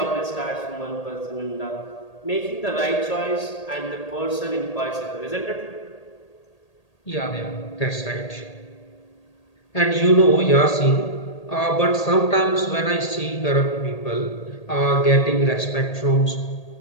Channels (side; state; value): right; late; 1.8 ms